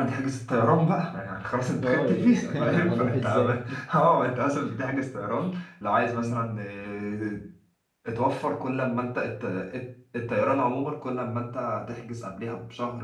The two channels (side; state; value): both; identical; correlation 1.00